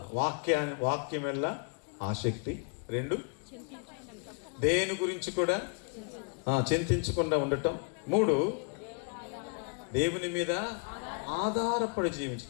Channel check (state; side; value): quieter; right; 39.0 dB